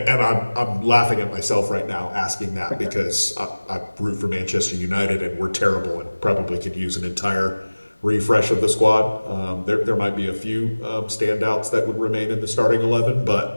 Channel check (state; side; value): inverted; both; correlation -1.00